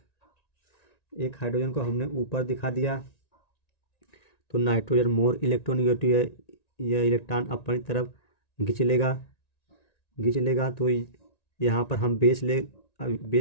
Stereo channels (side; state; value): right; late; 1.9 ms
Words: एक हाइड्रोजन को हमने ऊपर दिखा दिया, तो नाइट्रोजन मोर इलेक्ट्रोनेगेटिव है, यह इलेक्ट्रॉन अपनी तरफ खींच लेगा, तो यहाँ पर हम बेस